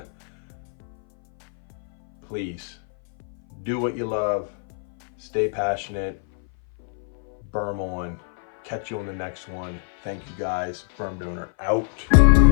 Please, do what you love. Stay passionate. Burm on. Catch you on the next one. Thank you guys. Burmdonor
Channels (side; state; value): right; silent; 58 dB below the other